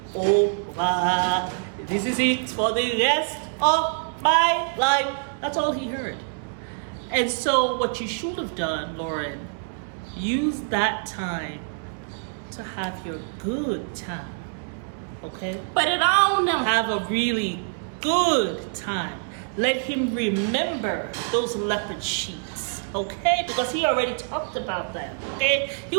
over. This is it for the rest of my life. That's all he heard. And so what you should have done, Loren, use that time to have your good time. Okay? Put it on him. Have a really good time. Let him remember those leopard sheets, okay? Because he already talked about that, okay? He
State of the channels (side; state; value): left; silent; digital silence